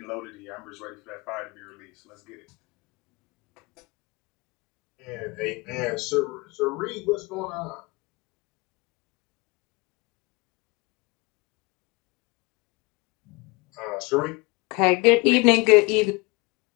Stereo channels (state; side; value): quieter; right; 26.0 dB